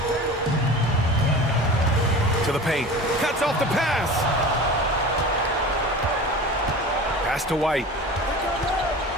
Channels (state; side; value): normal; both; correlation 0.36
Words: To the paint. Cuts off the pass. Pass to White.